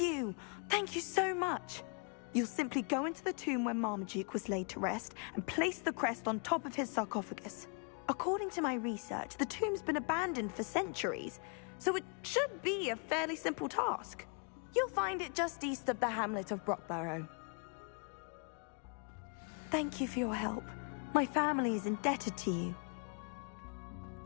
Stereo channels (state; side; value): quieter; right; 39.6 dB